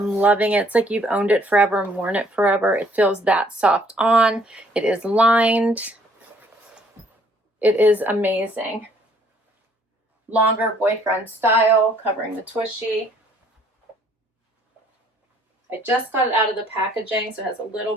loving it. It's like you've owned it forever and worn it forever. It feels that soft on. It is lined. It is amazing. Longer boyfriend style, covering the tushy. I just got it out of the packaging, so it has a little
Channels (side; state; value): both; normal; correlation 0.62